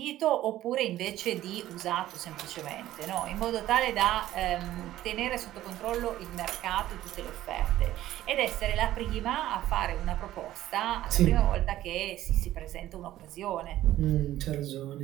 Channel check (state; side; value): quieter; left; 14.0 dB